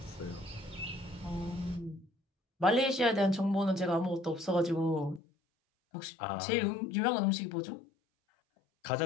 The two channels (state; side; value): drops out; right; at 5.2 s